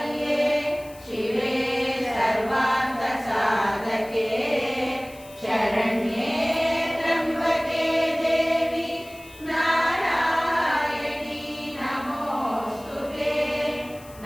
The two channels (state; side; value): noise; left; hiss, 22 dB below the sound